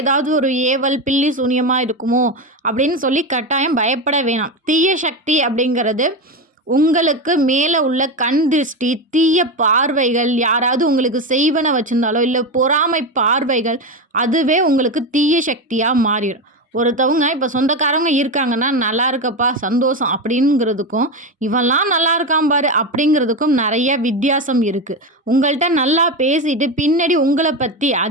ஒரு ஏவல் பில்லி சூனியமாக இருக்குமோ அப்படின்னு சொல்லி கட்டாயம் பயப்பட வேணாம். தீய சக்தி அப்படிங்கிறது உங்களுக்கு மேலே உள்ள கண் திருஷ்டி, தீய பார்வைகள், யாராவது உங்களுக்கு செய்வன வச்சுருந்தாலோ இல்லை பொறாமை பார்வைகள், அதுவே உங்களுக்கு தீய சக்தியாக மாறிடும். ஒருத்தவங்க இப்போ சொந்தக்காரவங்க இருக்காங்கன்னா நல்லா இருக்கப்பா சந்தோஷம் அப்படிங்கிறதுக்கும் இவெல்லாம் நல்லா இருக்கான் பாரு அப்படிங்கிறதுக்கும் நிறைய வித்தியாசம் இருக்குது. உங்கள்கிட்ட நல்லா பேசிட்டு பின்னாடி உங்களை பற்றி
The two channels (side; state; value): both; normal; correlation 0.16